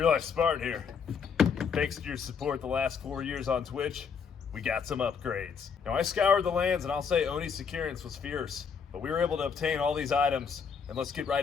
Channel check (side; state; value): right; quieter; 6.3 dB